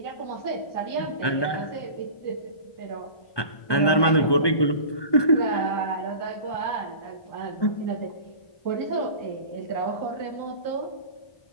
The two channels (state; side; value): late; right; 1.2 ms